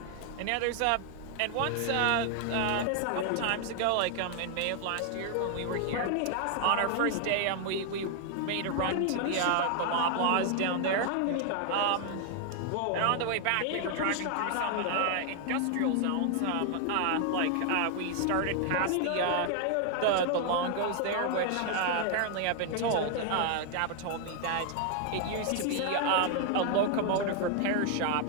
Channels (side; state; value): both; different; correlation 0.00